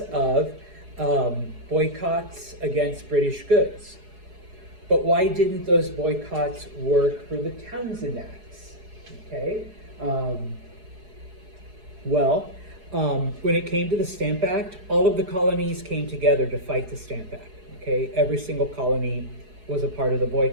of boycotts against British goods. But why didn't those boycotts work for the Townshend Acts? Okay, when it came to the Stamp Act, all of the colonies came together to fight the Stamp Act. Okay, every single colony was a part of the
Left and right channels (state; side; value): late; left; 4.8 ms